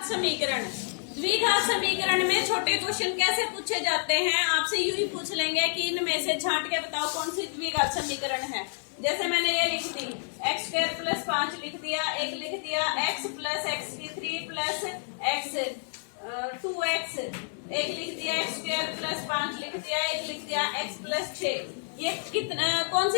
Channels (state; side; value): silent; right; 59 dB below the other